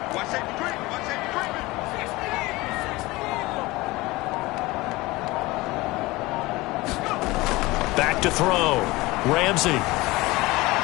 Back to throw. Ramsey.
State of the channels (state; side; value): quieter; right; 21.0 dB